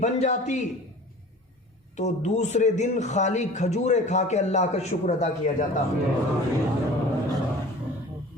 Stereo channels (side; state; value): both; normal; correlation 0.42